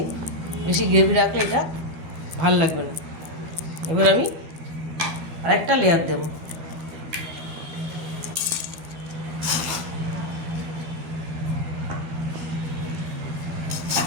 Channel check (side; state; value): left; late; 12 ms